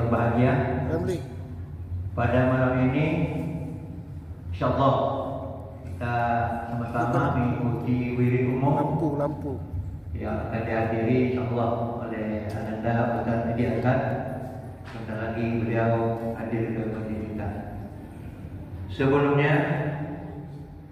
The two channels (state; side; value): identical; both; correlation 1.00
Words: Ramli, Pada malam ini insyaallah kita sama-sama mengikuti wirid umum lampu yang akan dihadiri insyaallah oleh Ananda Ustaz Edi Azhar. Sebentar lagi beliau hadir ke masjid kita. Sebelumnya